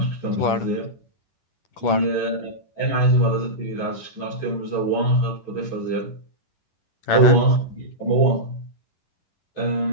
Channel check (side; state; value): right; late; 10 ms